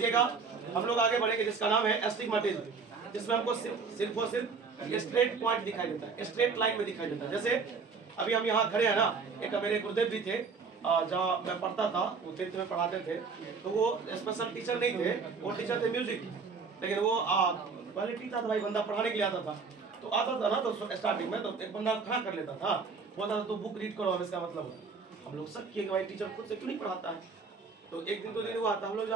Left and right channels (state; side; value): quieter; left; 5.0 dB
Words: हम लोग आगे बढ़ेंगे, जिसका नाम है एस्टिग्मेटिज्म, जिसमें हमको सिर्फ और सिर्फ स्ट्रेट पॉइंट दिखाई देता है, स्ट्रेट लाइन में दिखाई देता है। जैसे अभी हम यहाँ खड़े हैं ना, एक मेरे गुरुदेव भी थे, जहाँ मैं पढ़ता था, वो 10th में पढ़ाते थे, तो वो स्पेशल टीचर नहीं थे, वो टीचर थे म्यूजिक, लेकिन वो क्वालिटी था, भाई बंदा पढ़ाने के लिए आता था, तो आता था ना, तो स्टार्टिंग में तो एक बंदा खड़ा कर लेता था, बोलता था तो बुक रीड करो, इसका मतलब हम लोग शक किए कि भाई टीचर खुद से क्यों नहीं पढ़ाता है। तो एक दिन 2 दिन हुआ था, हम लोग जो